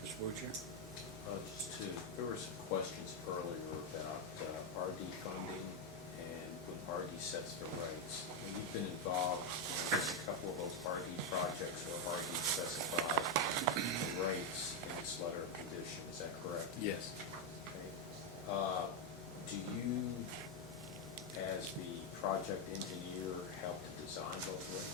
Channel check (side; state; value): both; normal; correlation 0.05